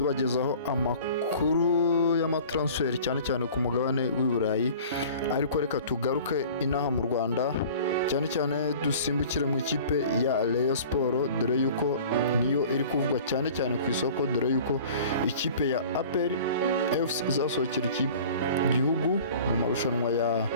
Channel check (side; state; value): both; inverted; correlation -0.44